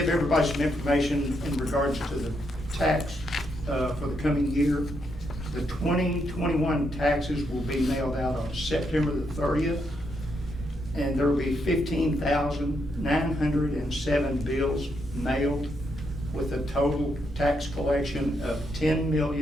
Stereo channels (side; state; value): both; normal; correlation 0.79